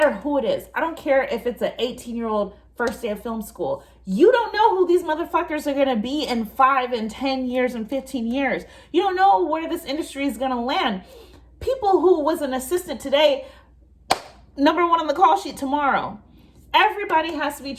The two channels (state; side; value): identical; both; correlation 1.00